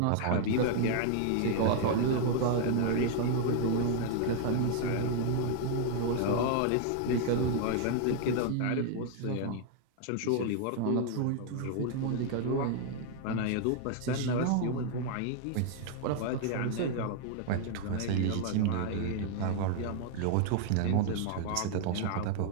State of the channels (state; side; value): different; both; correlation 0.00